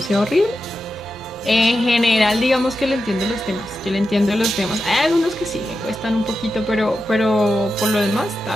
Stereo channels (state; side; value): normal; both; correlation 0.90